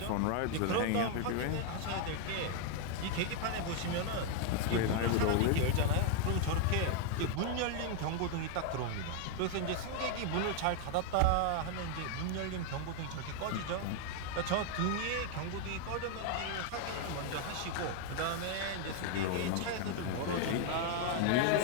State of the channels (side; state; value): both; different; correlation 0.00